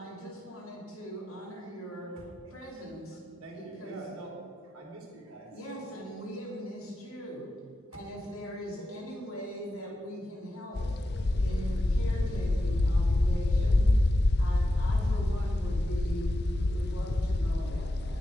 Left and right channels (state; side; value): normal; both; correlation 0.90